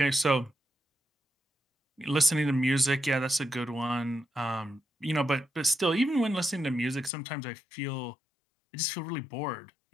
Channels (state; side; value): drops out; right; at 7.1 s